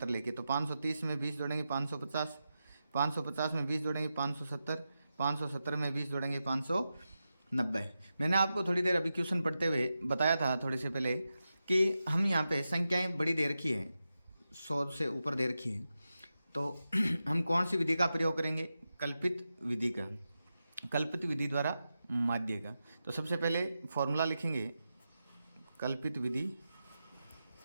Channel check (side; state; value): both; inverted; correlation -0.90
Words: लेके। तो 530 में 20 जोड़ेंगे 550, 550 में 20 जोड़ेंगे 570, 570 में 20 जोड़ेंगे 590। मैंने आपको थोड़ी देर अभी क्वेश्चन पढ़ते हुए बताया था थोड़े से पहले कि हम यहाँ पे संख्याएं बड़ी दे रखी है, 100 से ऊपर दे रखी है, तो हम कौन सी विधि का प्रयोग करेंगे? कल्पित विधि का, कल्पित विधि द्वारा माध्य का। तो सबसे पहले फॉर्मूला लिखेंगे, कल्पित विधि